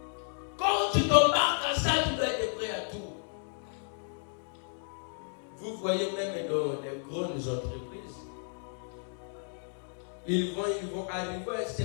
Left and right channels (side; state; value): right; silent; 56 dB below the other